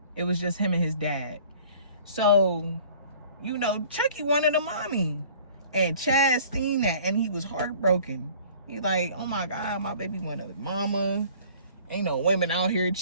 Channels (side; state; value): both; inverted; correlation -0.51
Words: it was just him and his dad. So, you know, Chucky wanted a mommy. And Chaz seen that and he was heartbroken. He like, oh my God, my baby wanted a mama. Ain't no women out here